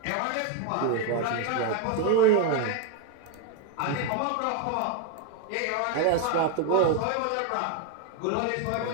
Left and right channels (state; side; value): different; both; correlation 0.01